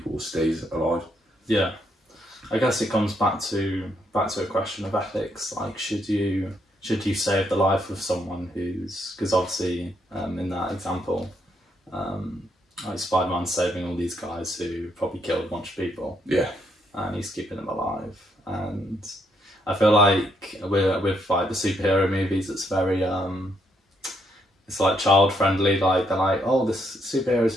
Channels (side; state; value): both; normal; correlation 0.75